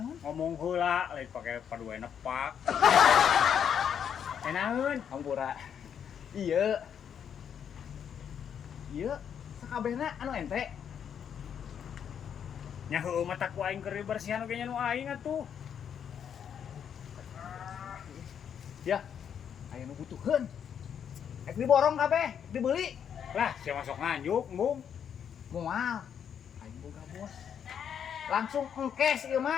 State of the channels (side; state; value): right; quieter; 8.3 dB